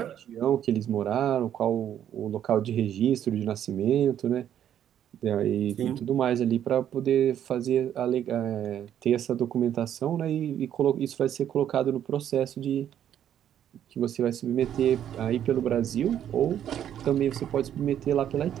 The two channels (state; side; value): quieter; left; 10.2 dB